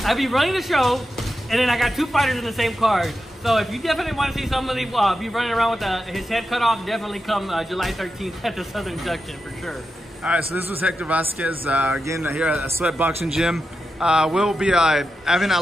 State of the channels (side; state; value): both; normal; correlation 0.89